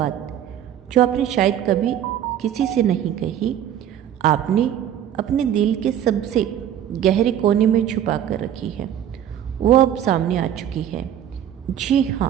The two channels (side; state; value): left; quieter; 10.5 dB